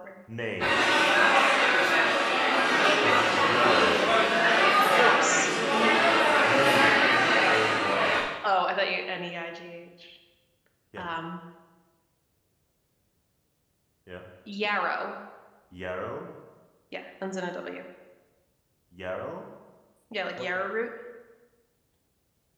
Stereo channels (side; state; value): both; identical; correlation 1.00